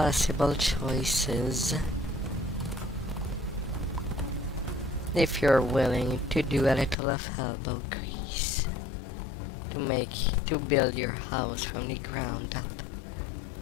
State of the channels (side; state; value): right; drops out; at 7.0 s